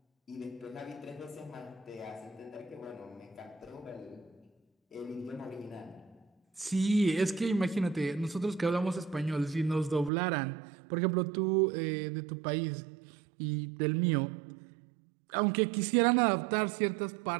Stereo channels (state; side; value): drops out; left; at 10.1 s